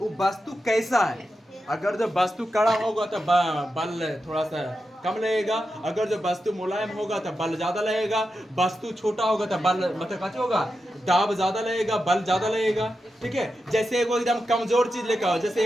वस्तु कैसा है, अगर जो वस्तु कड़ा होगा तो बल थोड़ा सा कम लगेगा, अगर जो वस्तु मुलायम होगा तो बल ज्यादा लगेगा, वस्तु छोटा होगा तो बल मतलब कैसे होगा, दाब ज्यादा लगेगा, बल ज्यादा लगेगा। ठीक है, जैसे एगो एकदम कमजोर चीज लेके आओ, जैसे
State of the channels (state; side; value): normal; both; correlation 0.89